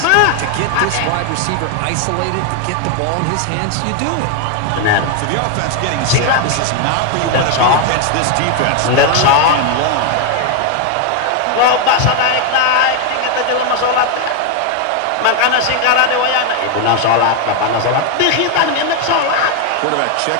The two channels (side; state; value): both; different; correlation 0.01